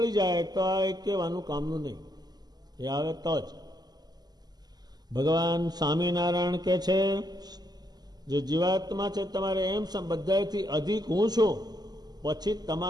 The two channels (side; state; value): left; late; 0.20 ms